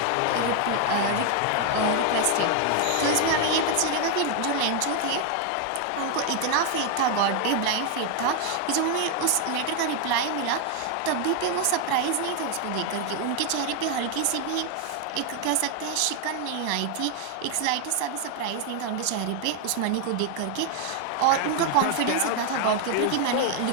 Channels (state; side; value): different; both; correlation 0.01